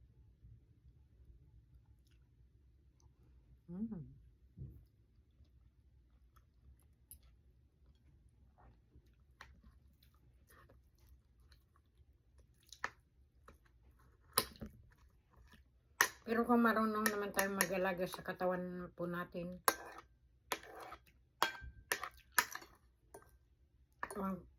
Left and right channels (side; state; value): both; identical; correlation 1.00